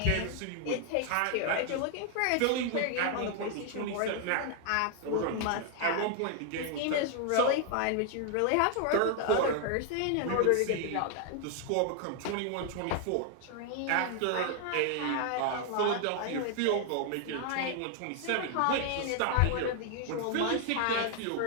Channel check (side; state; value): both; different; correlation 0.00